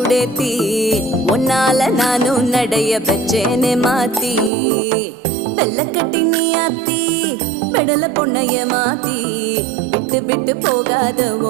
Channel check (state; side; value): drops out; left; at 4.5 s